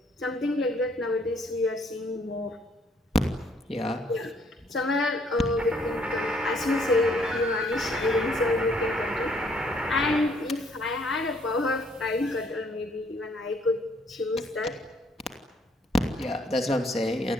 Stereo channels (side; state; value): both; normal; correlation 0.66